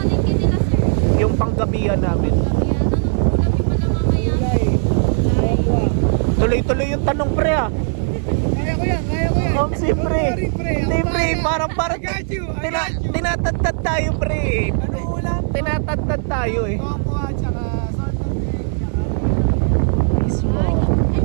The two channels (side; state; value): left; silent; 67 dB below the other